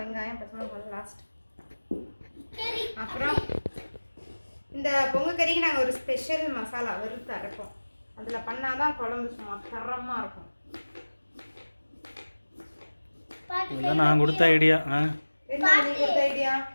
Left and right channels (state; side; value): inverted; both; correlation -1.00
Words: வெங்காயம் பச்சை மிளகாய் லாஸ்ட். சரி. அப்புறம் இந்த பொங்க கறிக்கு நாங்கள் ஒரு ஸ்பெஷல் மசாலா வறுத்து அரைப்போம். அதில் பண்ணாதான் குழம்பு சும்மா தரமாக இருக்கும். இதெல்லாம் நான் கொடுத்த ஐடியா. என்ன நீ கொடுத்த ஐடியா?